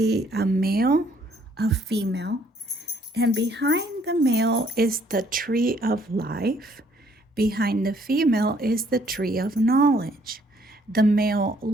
a male, a female, and behind the male is the tree of life. Behind the female is the tree of knowledge. The male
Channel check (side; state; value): both; normal; correlation 0.64